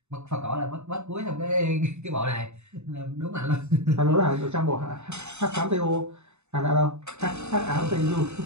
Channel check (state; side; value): late; left; 0.82 ms